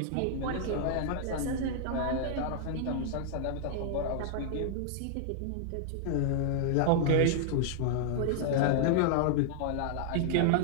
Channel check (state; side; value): different; both; correlation -0.01